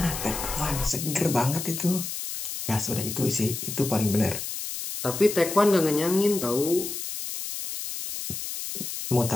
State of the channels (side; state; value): left; noise; hiss, 6 dB below the sound